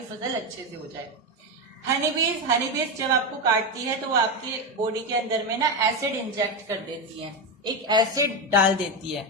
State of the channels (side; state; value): both; normal; correlation 0.12